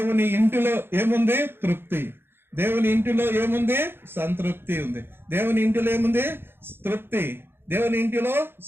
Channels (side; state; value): left; late; 0.11 ms